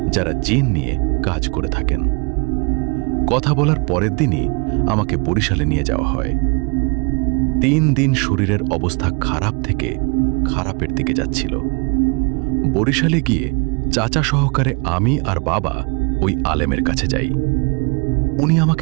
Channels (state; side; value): quieter; left; 32.2 dB